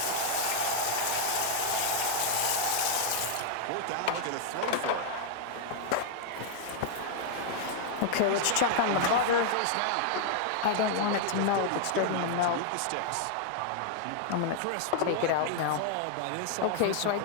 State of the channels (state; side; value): different; both; correlation 0.00